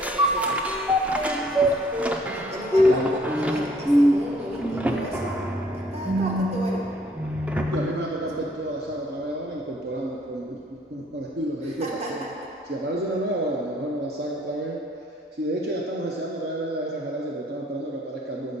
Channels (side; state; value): both; normal; correlation 0.62